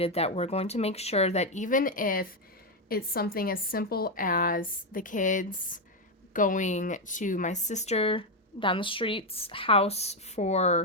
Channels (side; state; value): both; normal; correlation 0.05